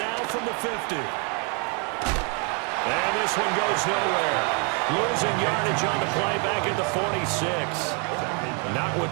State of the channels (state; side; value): quieter; left; 36.2 dB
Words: from the 50. And this one goes nowhere. Losing yardage on the play back at the 46. Not